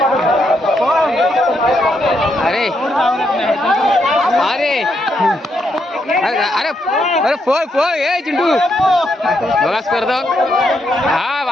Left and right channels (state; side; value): normal; both; correlation 0.78